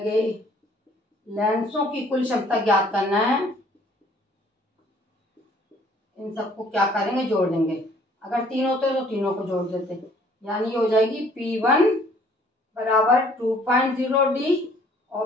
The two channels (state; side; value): normal; both; correlation 0.59